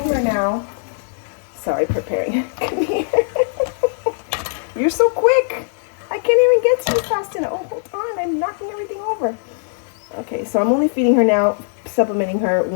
her now. Sorry, preparing. Come here. You're so quick. I can't even get to you fast enough. Oh, hold on, I'm knocking everything over. Okay, so I'm only feeding her now, supplementing her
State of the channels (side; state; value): right; silent; 61 dB below the other